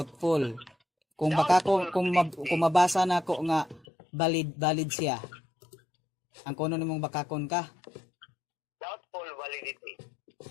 Kung baka kung mabasa na ako nga valid siya. Ang kuno nimong bakakon ka. Doubtful validity.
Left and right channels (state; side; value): drops out; right; at 3.9 s